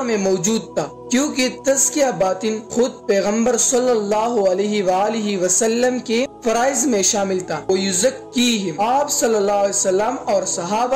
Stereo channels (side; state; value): both; identical; correlation 1.00